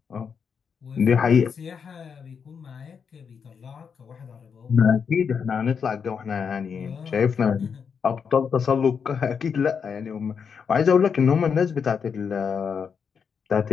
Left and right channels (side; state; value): right; quieter; 6.5 dB